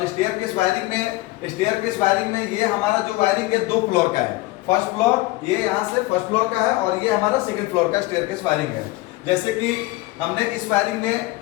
स्टेयरकेस वायरिंग में ये हमारा जो वायरिंग है 2 फ्लोर का है। फर्स्ट फ्लोर ये यहाँ से फर्स्ट फ्लोर का है और ये हमारा सेकंड फ्लोर का स्टेयरकेस वायरिंग है। जैसे कि हमने इस वायरिंग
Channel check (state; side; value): quieter; right; 19.7 dB